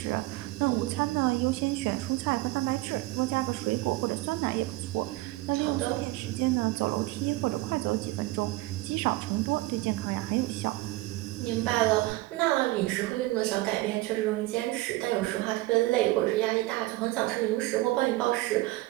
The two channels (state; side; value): quieter; left; 19.4 dB